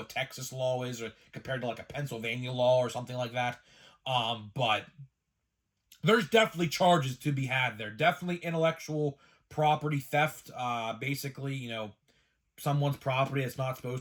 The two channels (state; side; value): identical; both; correlation 1.00